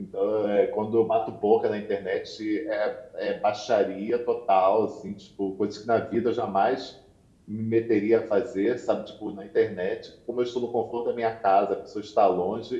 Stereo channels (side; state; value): both; identical; correlation 1.00